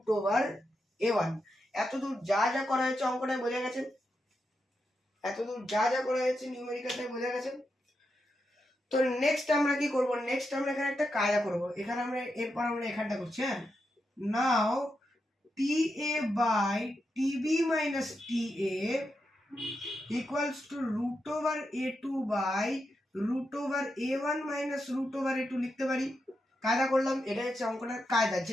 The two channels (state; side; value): normal; both; correlation 0.86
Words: over a1। এতদূর যা যা করা হয়েছে অঙ্কটায় বোঝা গেছে, এতদূর যা যা করা হয়েছে নিউমেরিক্যালটায় বোঝা গেছে। তো নেক্সট আমরা কি করব, নেক্সট আমরা এখানে একটা কায়দা করব, এখানে আমরা এরপর আমরা এখানটা করছি, হ্যাঁ, নাও ta by tb minus ta equals to root over a2 by root over a1 minus root over a2 লিখতে পারি। কায়দা করলাম, এটা হচ্ছে অঙ্কটার কায়দা,